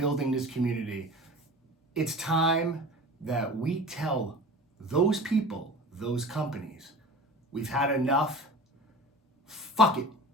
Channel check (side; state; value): both; normal; correlation 0.37